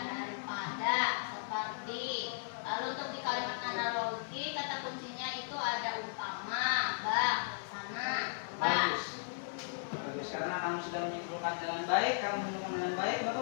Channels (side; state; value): right; silent; 54 dB below the other